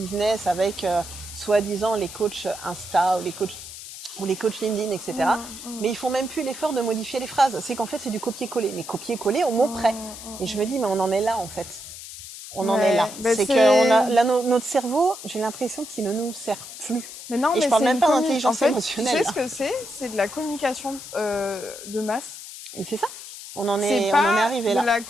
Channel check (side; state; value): left; noise; hiss, 12 dB below the sound